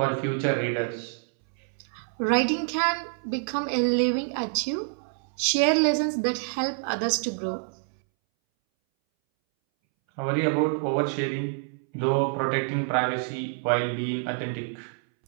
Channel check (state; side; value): silent; left; 60 dB below the other